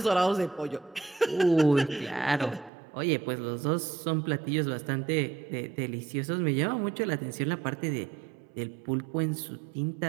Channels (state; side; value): drops out; left; at 2.7 s